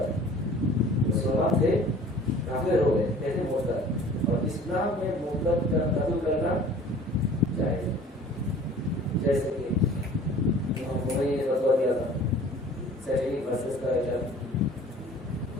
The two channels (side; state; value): both; normal; correlation 0.48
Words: مسلمان تھے کافر ہو گئے کہتے ہیں مرتد، اور اسلام میں مرتد کا قتل کرنا جائز، جیسے کہ نے فتویٰ دیا تھا سیٹنگ ورسز کا ایجنٹ،